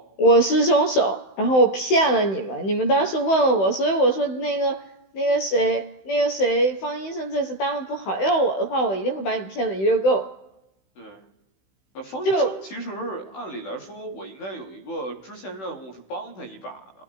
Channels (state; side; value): late; right; 16 ms